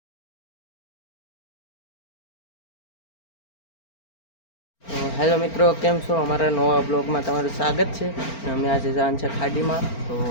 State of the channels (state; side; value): late; right; 4.4 ms